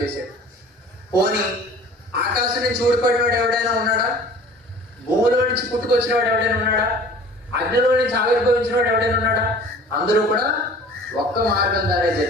చేశాడు. పోనీ ఆకాశం నుంచి ఊడిపడినవాడు ఎవడైనా ఉన్నాడా? భూమిలో నుంచి పుట్టుకొచ్చిన వాడు ఎవడైనా ఉన్నాడా? అగ్నిలో నుంచి ఆవిర్భవించిన వాడు ఎవడైనా ఉన్నాడా? అందరూ కూడా ఒక్క మార్గం ద్వారా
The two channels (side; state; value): both; normal; correlation 0.46